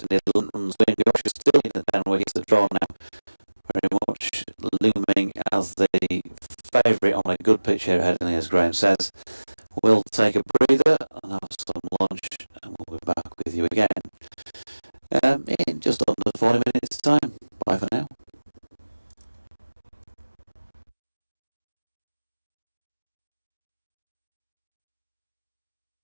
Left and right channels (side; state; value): both; inverted; correlation -1.00